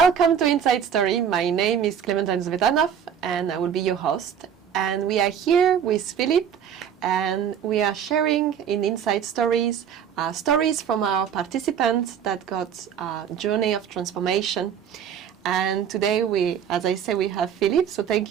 to Inside Story. My name is Clementine Zvetanov and I will be your host. And we are here with Philipp and we are sharing in Inside Stories stories from our participants that got a journey of transformation. And today we, as I say, we have Philipp. So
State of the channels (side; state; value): left; quieter; 8.4 dB